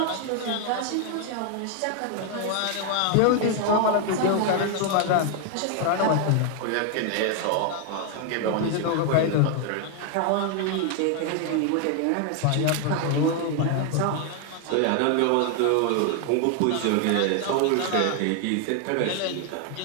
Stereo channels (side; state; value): both; different; correlation 0.00